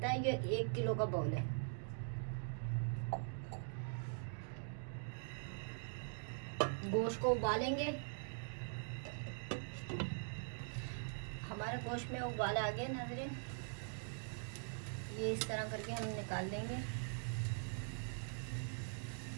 है। ये 1 किलो का बॉल है। गोश्त को उबालेंगे। हमारे गोश्त में उबाल आ गए नाज़रीन। ये इस तरह करके हम निकाल लेंगे।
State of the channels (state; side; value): silent; left; digital silence